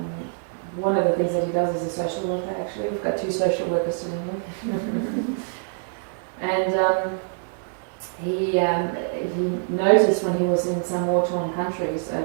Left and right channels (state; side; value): silent; left; digital silence